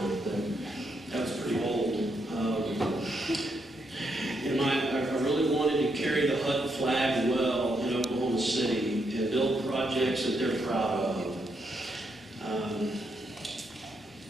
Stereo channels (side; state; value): both; normal; correlation 0.79